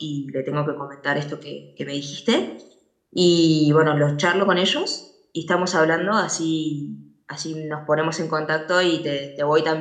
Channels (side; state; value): both; identical; correlation 1.00